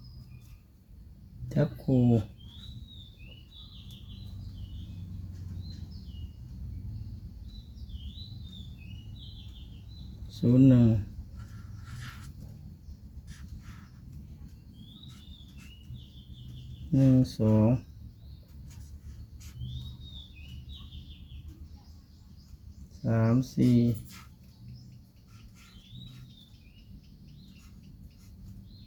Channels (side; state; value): both; identical; correlation 1.00